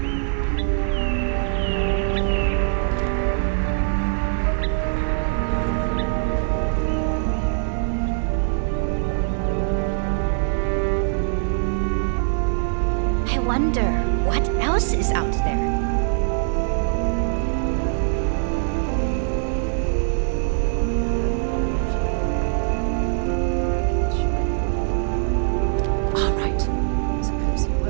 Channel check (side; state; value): left; silent; digital silence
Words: I wonder what else is out there. All right. Suppose you